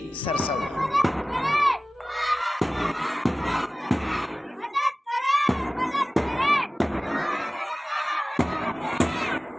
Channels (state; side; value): normal; both; correlation 0.98